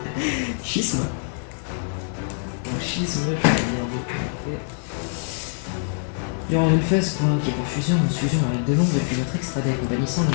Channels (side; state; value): right; silent; digital silence